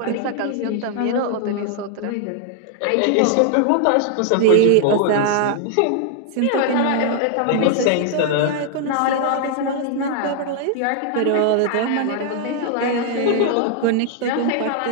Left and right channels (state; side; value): different; both; correlation 0.00